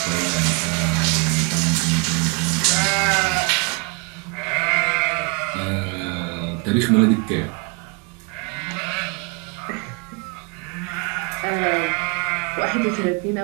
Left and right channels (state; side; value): quieter; left; 30.9 dB